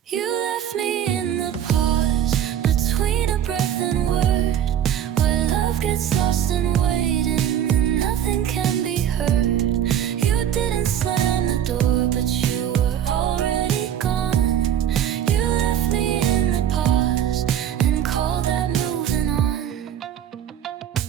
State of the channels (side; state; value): left; quieter; 9.9 dB